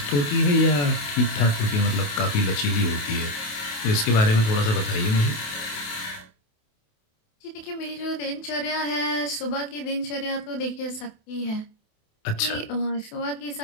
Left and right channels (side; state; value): right; late; 28 ms